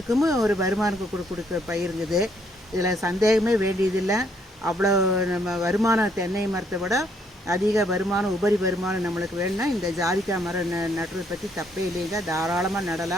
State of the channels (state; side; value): normal; both; correlation 0.69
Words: ஒரு வருமானம் கொடுக்க பயிருங்குது. இதில் சந்தேகமே வேண்டியதில்லை. அவ்வளோ நம்ம வருமானம் தென்னை மரத்தை விட அதிக வருமானம், உபரி வருமானம் நம்மளுக்கு வேணும்னா இந்த ஜாதிக்காய் மரம் நடுறதை பற்றி தப்பே இல்லைங்க. தாராளமாக